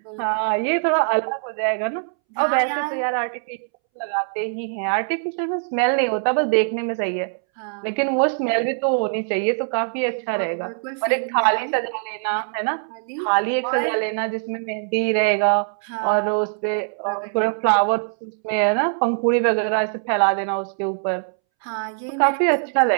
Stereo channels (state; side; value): silent; left; 64 dB below the other